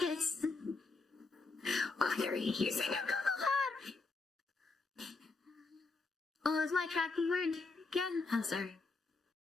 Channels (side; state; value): right; quieter; 3.8 dB